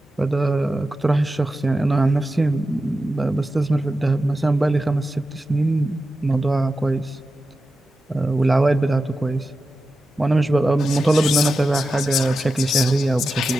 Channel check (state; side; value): normal; both; correlation 0.91